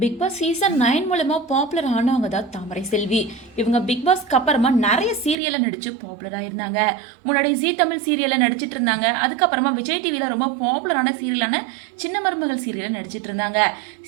பிக் பாஸ் சீசன் 9 மூலமா பாப்புலர் ஆனவங்க தான் தாமரை செல்வி. இவங்க பிக் பாஸ்க்கு அப்புறமா நிறைய சீரியல்ல நடிச்சு பாப்புலர் ஆயிருந்தாங்க. முன்னாடி ஜீ தமிழ் சீரியல்ல நடிச்சிட்டு இருந்தாங்க. அதுக்கப்புறமா விஜய் டிவில ரொம்ப பாப்புலரான சீரியலான சின்ன மருமகள் சீரியல்ல நடிச்சிட்டு இருந்தாங்க.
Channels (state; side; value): drops out; left; at 5.4 s